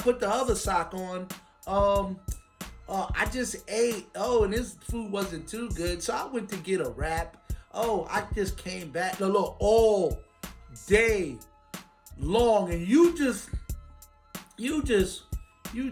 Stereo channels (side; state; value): both; identical; correlation 1.00